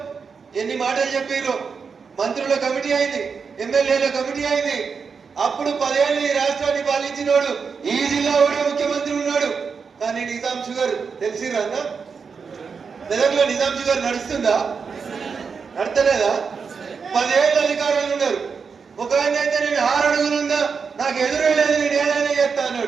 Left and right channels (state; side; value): quieter; left; 5.6 dB